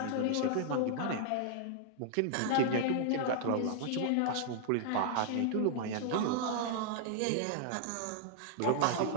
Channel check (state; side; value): different; both; correlation -0.01